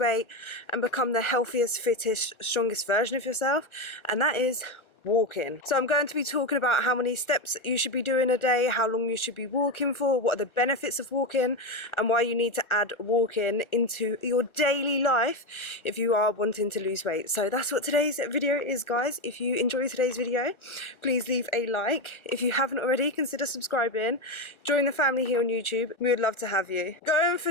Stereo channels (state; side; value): late; right; 1.3 ms